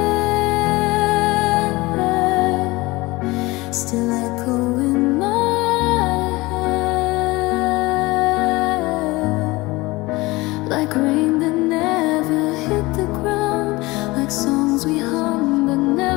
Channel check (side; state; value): right; quieter; 21.8 dB